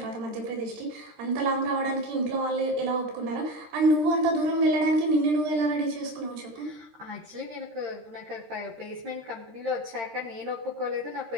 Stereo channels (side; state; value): left; late; 13 ms